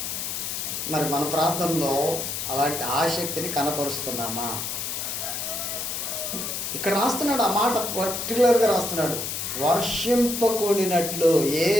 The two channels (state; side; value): noise; left; hiss, 4 dB below the sound